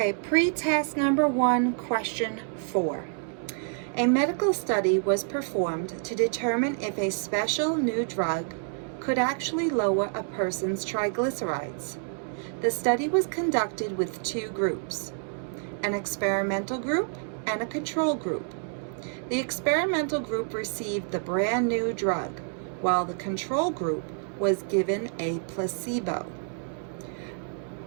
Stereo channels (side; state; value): left; silent; 58 dB below the other